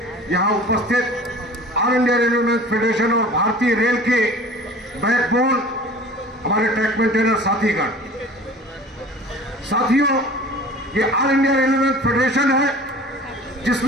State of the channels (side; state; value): both; normal; correlation 0.43